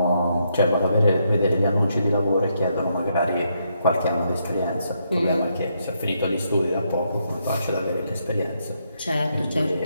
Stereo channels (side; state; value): both; inverted; correlation -0.77